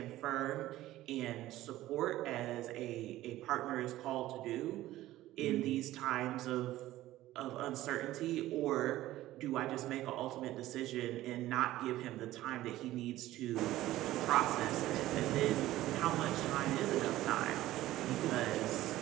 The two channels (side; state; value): left; quieter; 15.4 dB